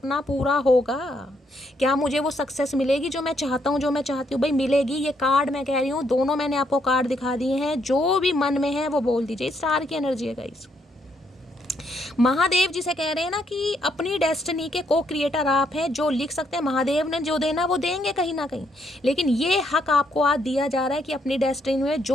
पूरा होगा, क्या मुझे वो सक्सेस मिलेगी जो मैं चाहता हूँ, जो मैं चाहती हूँ। भाई मिलेगी। ये कार्ड मैं कह रही हूँ, दोनों मैंने आपको कार्ड दिखा दिए हैं, जो भी मन में है वो बोल दीजिए। स्टार की एनर्जी है गाइस। महादेव जिसे कह रहे हैं ना कि अपनी डेस्टिनी के को क्रिएटर आप हैं, जो लिख सकते हैं। महादेव ने जो देना वो देंगे कहीं ना कहीं, लेकिन ये हक आपको आज दिया जा रहा है कि अपनी डेस्टिनी में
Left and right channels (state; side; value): normal; both; correlation 0.74